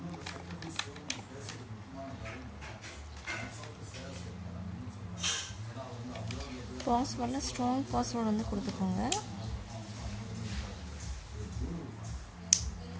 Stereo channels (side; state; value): both; identical; correlation 1.00